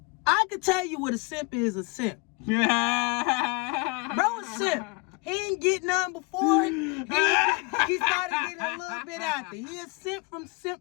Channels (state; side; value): quieter; right; 27.6 dB